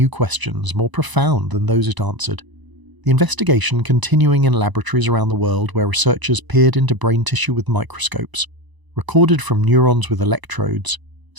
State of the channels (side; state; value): left; late; 1.0 ms